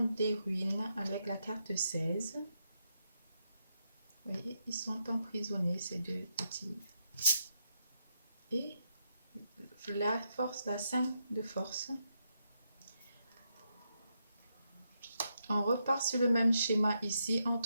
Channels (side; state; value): both; inverted; correlation -0.81